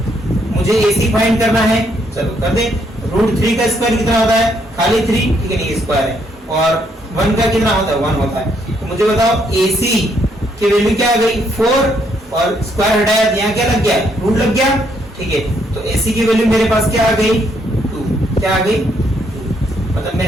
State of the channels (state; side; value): normal; both; correlation 0.72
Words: मुझे एसी फाइंड करना है, चलो कर दे। √3 का स्क्वायर कितना होता है, खाली 3, ठीक है, ये स्क्वायर है। और 1 का कितना होता है, 1 होता है। तो मुझे बताओ एसी की वैल्यू क्या आ गई 4, और स्क्वायर हटाया तो यहाँ क्या लग गया, रूट लग गया, ठीक है। तो एसी की वैल्यू मेरे पास क्या आ गई 2, क्या आ गई 2, मतलब